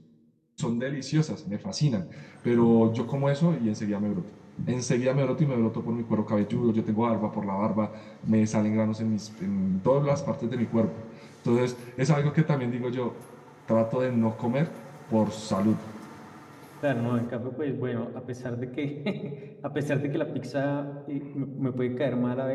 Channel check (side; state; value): both; identical; correlation 1.00